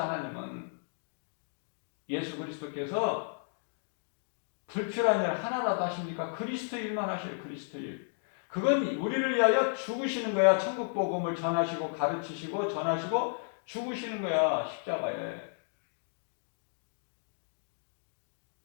하나님은 예수 그리스도께서 불필요한 일 하나라도 하십니까? 그리스도 일만 하셔요. 그리스도 일. 그건 우리를 위하여 죽으시는 거야. 천국 복음을 전하시고 가르치시고 전하시고 죽으시는 거야. 십자가에.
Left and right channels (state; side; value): silent; right; digital silence